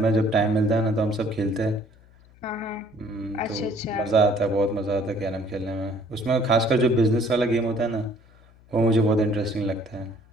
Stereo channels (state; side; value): noise; left; hum, 27 dB below the sound